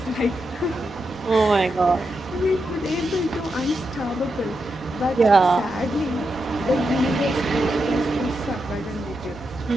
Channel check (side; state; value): both; normal; correlation 0.86